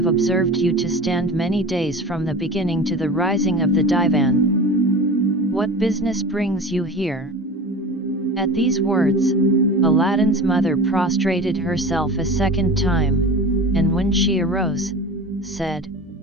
observed you to stand many days from the beginning to the rising of the divan. What business brings you here?" At these words, Aladdin's mother prostrated herself a second time, and when she arose, said,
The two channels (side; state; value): both; normal; correlation 0.33